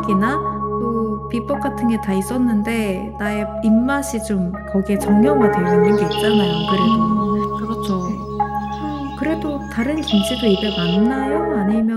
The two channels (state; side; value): identical; both; correlation 1.00